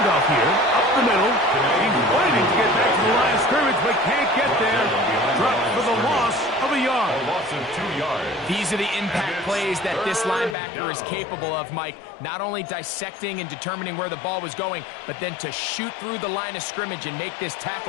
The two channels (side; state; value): right; drops out; at 10.6 s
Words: here, up the middle. He's waiting to get back to the line of scrimmage, but can't get there. Dropped for the loss of a yard. A loss of 2 yards. These are the impact plays that this linebacker is capable of, Mike. Not only dissecting and determining where the ball was going, but then to shoot through the line of scrimmage and make this